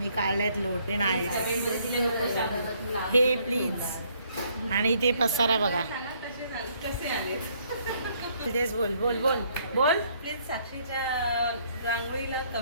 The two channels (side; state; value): both; inverted; correlation -0.67